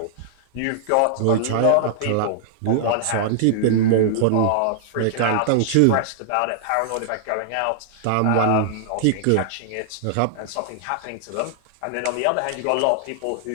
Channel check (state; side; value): different; both; correlation -0.01